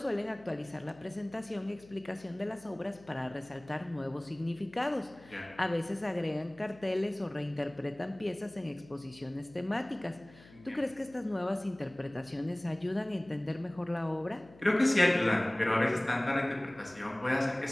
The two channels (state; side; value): noise; left; hum, 23 dB below the sound